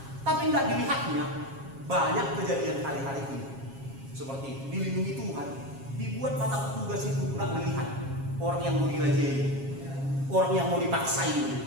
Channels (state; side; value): late; left; 7.4 ms